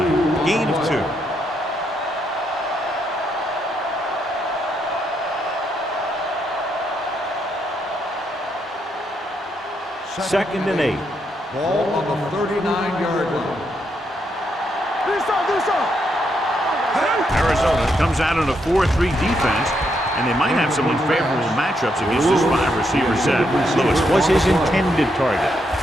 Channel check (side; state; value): both; normal; correlation 0.78